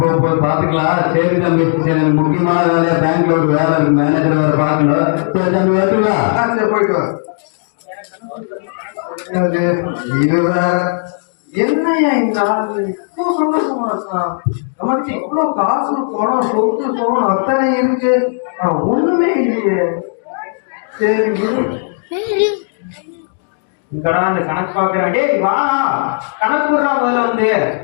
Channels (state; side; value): silent; right; 69 dB below the other